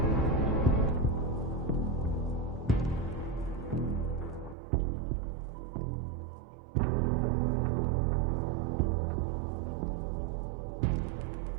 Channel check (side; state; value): left; drops out; at 4.5 s